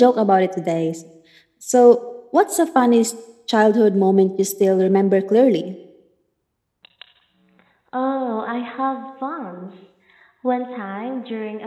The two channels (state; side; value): identical; both; correlation 1.00